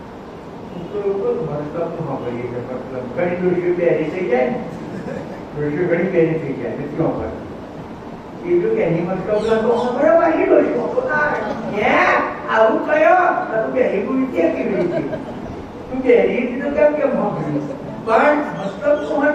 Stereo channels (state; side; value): identical; both; correlation 1.00